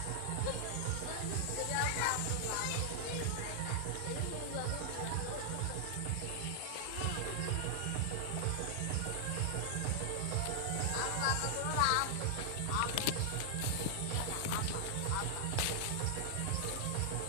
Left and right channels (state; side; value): different; both; correlation -0.01